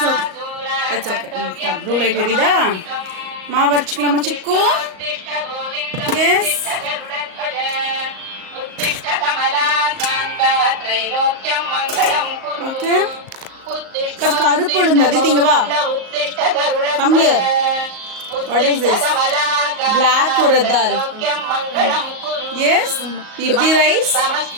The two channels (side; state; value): left; late; 38 ms